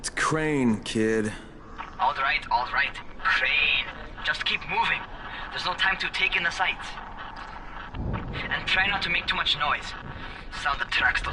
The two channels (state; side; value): identical; both; correlation 1.00